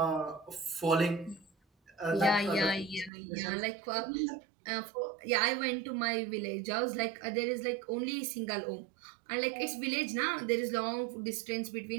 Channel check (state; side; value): drops out; left; at 3.1 s